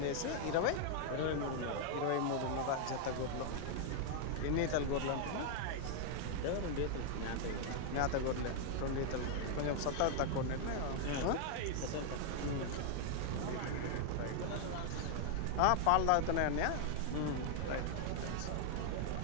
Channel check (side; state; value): both; different; correlation 0.00